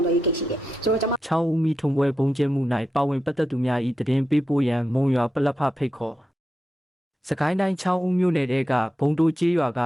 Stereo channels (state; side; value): normal; both; correlation 0.88